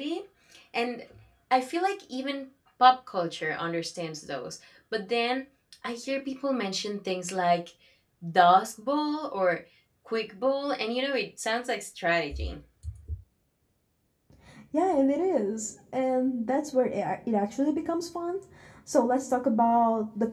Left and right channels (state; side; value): identical; both; correlation 1.00